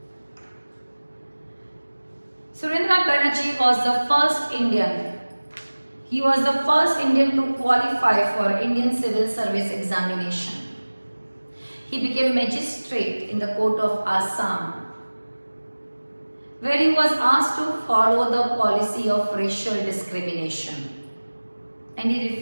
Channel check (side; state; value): both; inverted; correlation -1.00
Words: Surendranath Banerjee was the first Indian. He was the first Indian to qualify for Indian Civil Service examination. He became magistrate in the court of Assam, where he was asked to follow the policy of racial discrimination, and he